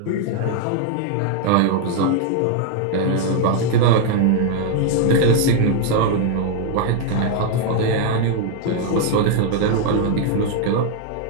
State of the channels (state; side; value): different; both; correlation 0.00